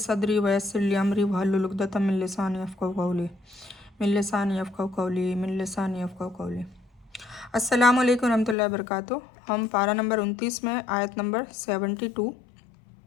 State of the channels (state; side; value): drops out; right; at 8.6 s